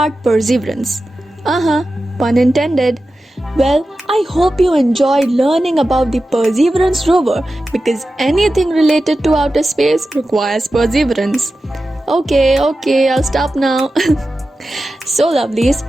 perseverance. Pun intended. Well, I hope you enjoyed learning about the Perseverance rover because anything related to outer space requires perseverance. Okay, I'll stop now. So lovelies,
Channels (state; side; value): normal; both; correlation 0.93